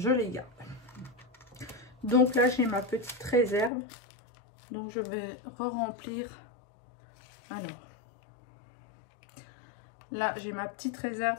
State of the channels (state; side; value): drops out; right; at 3.7 s